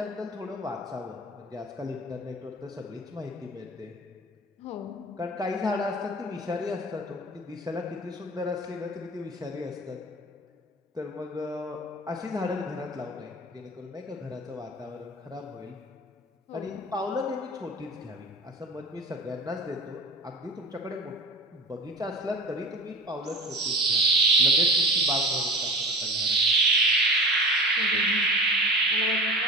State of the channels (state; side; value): normal; both; correlation 0.34